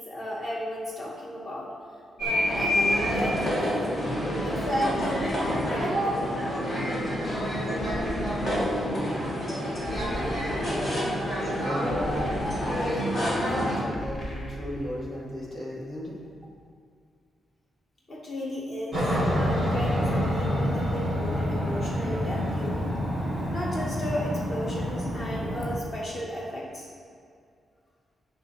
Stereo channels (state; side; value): normal; both; correlation 0.81